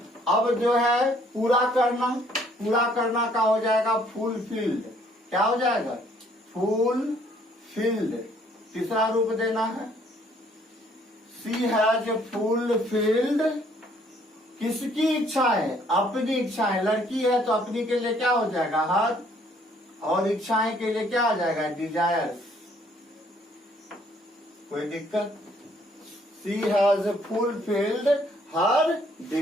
अब जो है पूरा करना का हो जाएगा फुलफिल्ड, क्या हो जाएगा? फुलफिल्ड। तीसरा रूप देना है, शी हैज फुलफिल्ड किसकी इच्छाएं? अपनी इच्छाएं। लड़की है तो अपनी के लिए क्या हो जाएगा? हर, और इच्छाएं के लिए क्या आ जाएगा? डिजायर्स। कोई दिक्कत? She has fulfilled her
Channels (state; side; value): normal; both; correlation 0.63